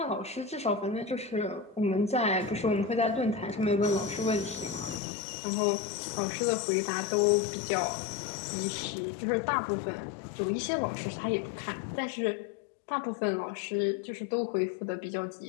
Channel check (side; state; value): right; drops out; at 5.0 s